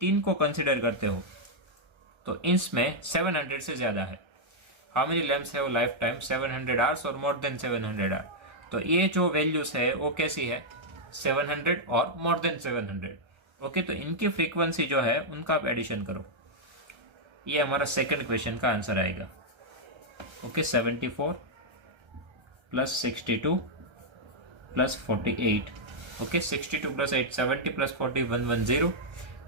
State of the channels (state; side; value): late; left; 1.3 ms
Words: को कंसिडर करते हो तो इसमें 700 से ज्यादा है। हाउ मेनी लैम्प्स है वो लाइफ टाइम 700 hours और मोर देन 700 hours। तो ये जो वैल्यूज है वो कैसी है 700 और मोर देन 700। ओके, तो इनकी फ्रीक्वेंसी जो है उनका आप एडिशन करो, ये हमारा सेकंड क्वेश्चन का आंसर आएगा। Okay, 74 plus 62 plus 48। Okay, 62 plus 8 70 plus 40 110,